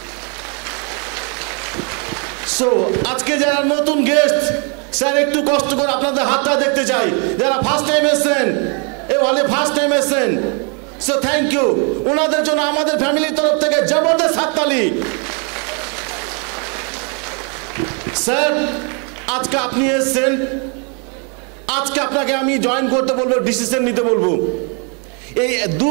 সো আজকে যারা নতুন গেস্ট, স্যার একটু কষ্ট করে আপনাদের হাতটা দেখতে চাই। যারা ফার্স্ট টাইম এসেছেন, এ হলে ফার্স্ট টাইম এসেছেন, সো থ্যাংক ইউ। ওনাদের জন্য আমাদের ফ্যামিলির তরফ থেকে জবরদস্ত হাততালি। স্যার আজকে আপনি এসেছেন, আজকে আপনাকে আমি জয়েন করতে বলবো, ডিসিশন নিতে বলবো। এই 2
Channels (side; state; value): left; quieter; 36.4 dB